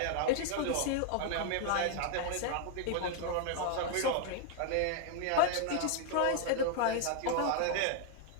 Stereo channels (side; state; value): both; different; correlation 0.00